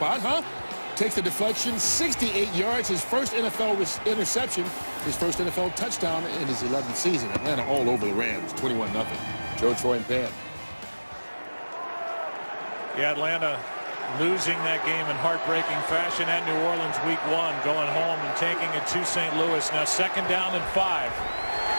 huh? Takes the deflection, 68 yards, his first NFL interception, his first NFL touchdown in his 11th season. Atlanta all over the Rams, 21-0. Joe, Troy, and Pan. Yeah, Atlanta losing that game in heartbreaking fashion at New Orleans week 1, going home and taking it to St. Louis. Now 2nd down and 5.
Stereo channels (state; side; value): inverted; both; correlation -1.00